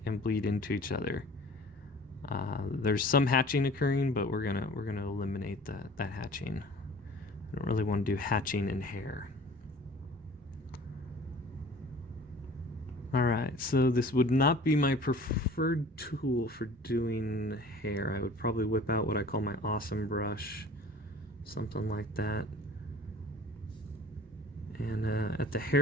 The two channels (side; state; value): both; normal; correlation 0.46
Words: and bleed into each other. There's some hatching occurring, but we're gonna eliminate that hatching. I don't really want to do hatching in hair. All right, so this would not be my preferred tool for doing hair. I would probably whip out what I call my awesome brush, something like that. And at the